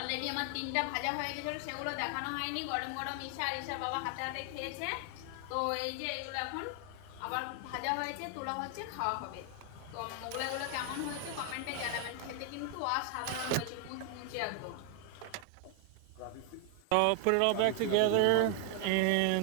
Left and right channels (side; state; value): both; different; correlation 0.00